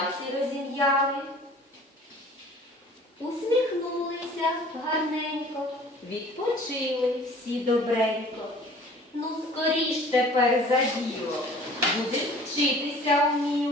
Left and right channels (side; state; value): both; normal; correlation 0.49